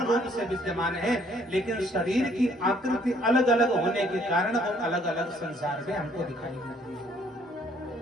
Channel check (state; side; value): normal; both; correlation 0.63